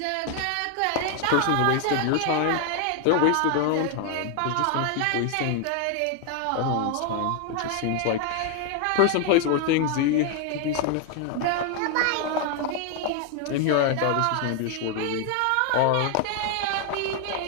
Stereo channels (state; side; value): different; both; correlation 0.00